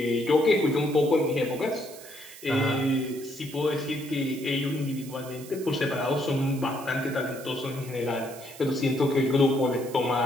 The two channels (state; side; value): noise; right; hiss, 17 dB below the sound